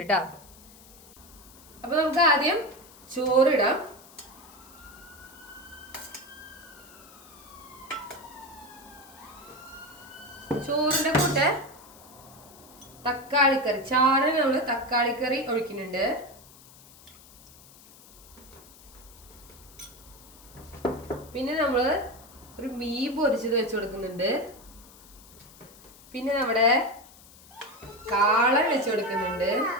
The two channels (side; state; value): left; noise; hiss, 22 dB below the sound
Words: കേട്ടോ. അപ്പൊ നമുക്ക് ആദ്യം ചോറിടാം. ചോറിന്റെ കൂടെ തക്കാളിക്കറി, ചാറിന് നമ്മള് തക്കാളിക്കറി ഒഴിക്കുന്നുണ്ട്. പിന്നെ നമ്മള് ഒരു മീൻ പൊരിച്ചത് വെച്ച് കൊടുക്കുന്നുണ്ട്. പിന്നെ നമ്മുടെ കാളൻ വെച്ച് കൊടുക്കുന്നുണ്ട്,